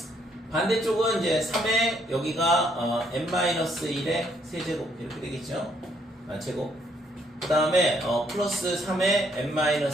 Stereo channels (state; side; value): normal; both; correlation 0.70